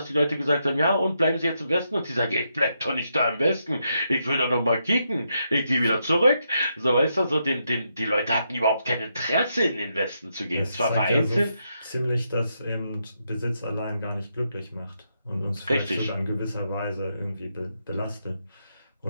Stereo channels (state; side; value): inverted; both; correlation -0.81